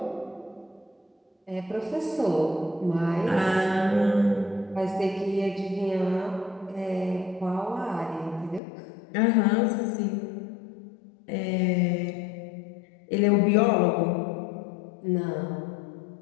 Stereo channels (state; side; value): drops out; right; at 8.6 s